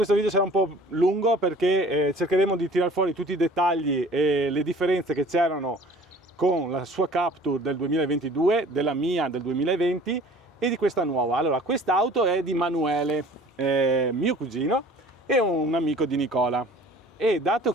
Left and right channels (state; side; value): normal; both; correlation 0.48